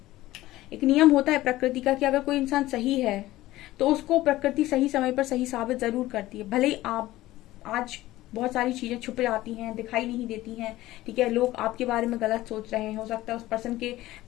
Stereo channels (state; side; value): quieter; right; 16.5 dB